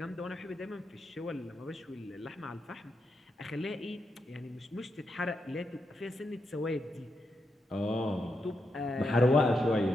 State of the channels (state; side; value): normal; both; correlation 0.84